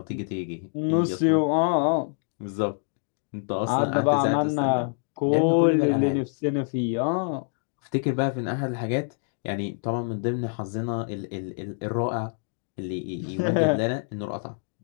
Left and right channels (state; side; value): silent; right; 61 dB below the other